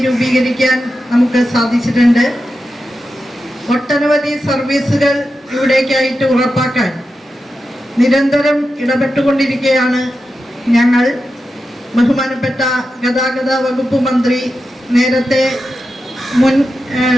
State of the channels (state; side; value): normal; both; correlation 0.90